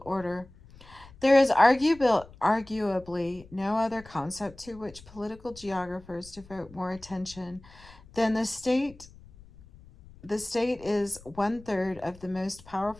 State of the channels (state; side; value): noise; left; rumble, 22 dB below the sound